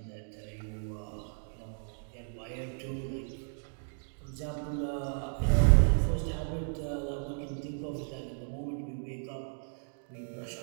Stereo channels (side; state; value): left; silent; digital silence